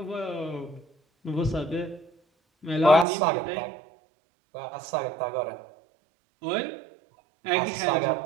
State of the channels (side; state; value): left; drops out; at 3.1 s